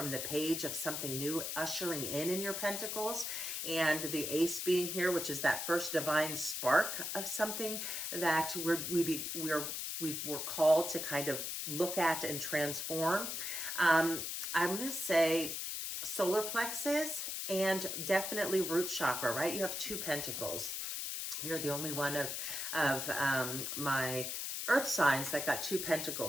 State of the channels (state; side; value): noise; left; hiss, 3 dB below the sound